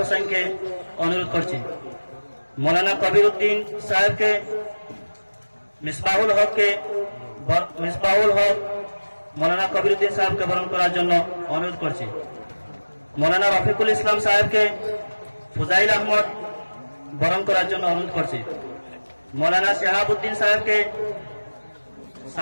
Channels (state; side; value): inverted; both; correlation -1.00